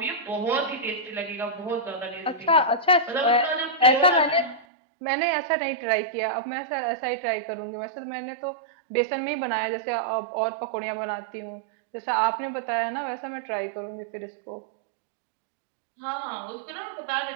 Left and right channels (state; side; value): drops out; left; at 4.7 s